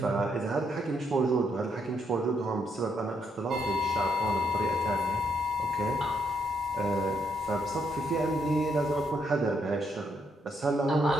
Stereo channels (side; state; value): both; normal; correlation 0.75